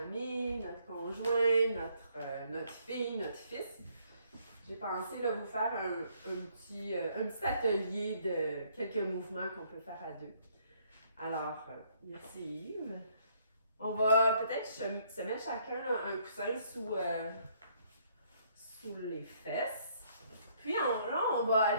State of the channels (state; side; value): inverted; both; correlation -0.67